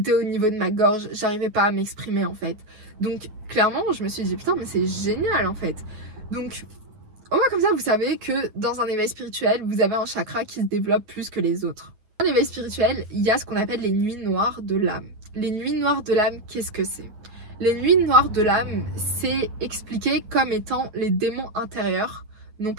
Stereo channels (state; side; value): late; left; 9.4 ms